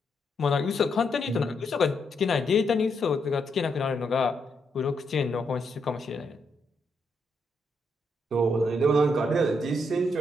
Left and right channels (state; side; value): normal; both; correlation 0.79